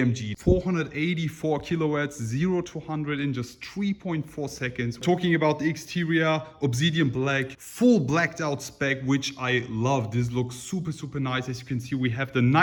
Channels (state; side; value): identical; both; correlation 1.00